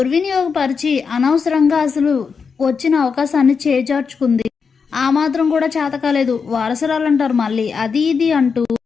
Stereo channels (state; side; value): quieter; right; 5.6 dB